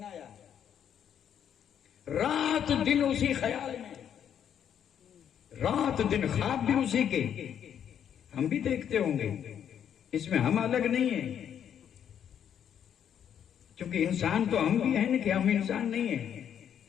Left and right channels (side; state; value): right; quieter; 9.0 dB